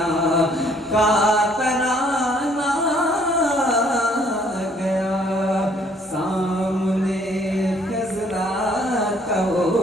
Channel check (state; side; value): normal; both; correlation 0.62